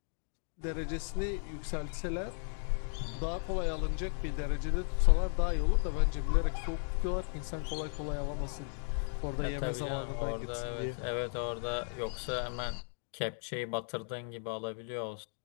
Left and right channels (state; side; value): silent; right; 54 dB below the other